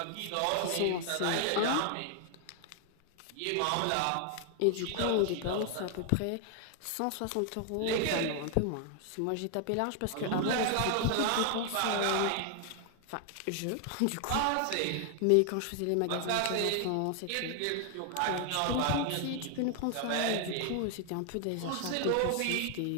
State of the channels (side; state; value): both; different; correlation 0.00